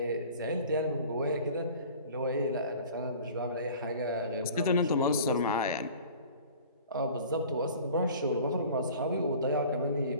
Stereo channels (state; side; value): inverted; both; correlation -0.44